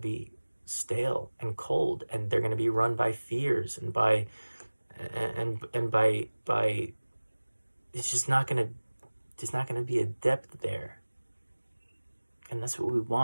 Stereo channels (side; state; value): both; inverted; correlation -1.00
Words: stale and cold, and they're going to be run by fears and by it's just not going to be a depth there. And that's what we